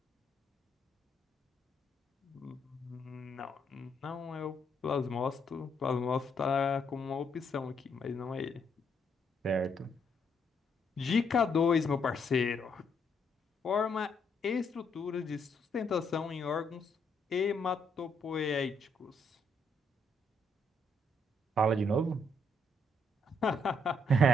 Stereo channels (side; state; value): both; normal; correlation 0.74